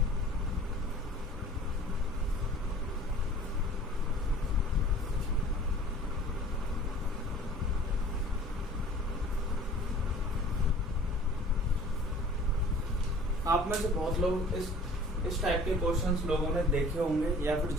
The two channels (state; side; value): normal; both; correlation 0.47